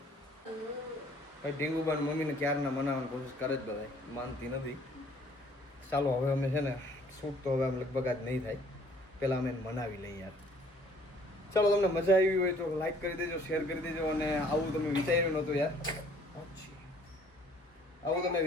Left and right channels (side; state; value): both; normal; correlation 0.58